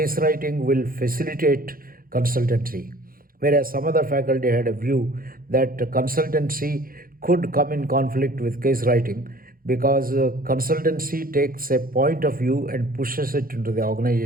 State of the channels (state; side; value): late; left; 0.42 ms